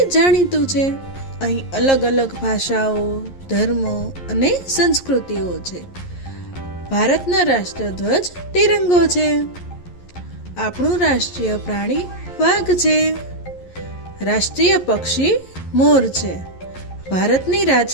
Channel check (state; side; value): late; right; 11 ms